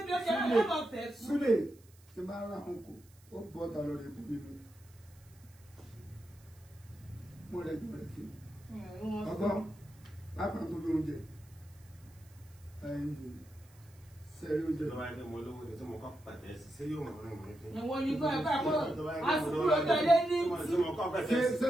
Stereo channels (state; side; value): noise; right; hiss, 28 dB below the sound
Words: Sule ti máa ń ra ọkọ̀ ó bọ́ ọ̀tà lọ rẹ̀ bú nínú. Mo rẹ̀ gbọ́ rẹ̀ fi. Ọgbọ́n lápá tó bí oúnjẹ. Sẹ́rí oúnjẹ. Lọ́wọ́ ẹgbẹ́ mo lówó ni tí mo kọ́ pàtẹ́ sí ṣé yóò mọ̀ orin mi fi. Ìwọ̀n ní kọ́ ẹ̀ka kó àsìkò tẹ̀lé ní tí.